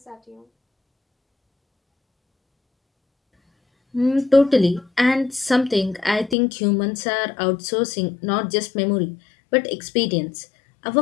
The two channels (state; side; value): drops out; right; at 6.4 s